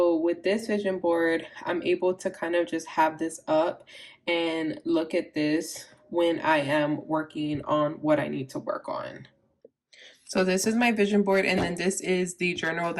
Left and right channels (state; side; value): identical; both; correlation 1.00